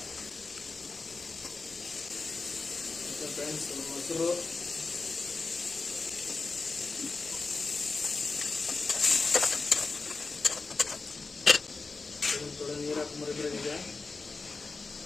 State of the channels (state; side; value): quieter; right; 4.1 dB